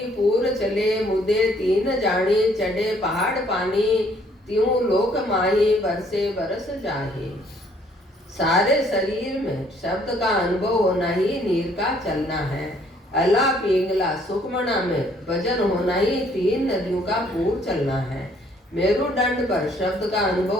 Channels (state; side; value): normal; both; correlation 0.63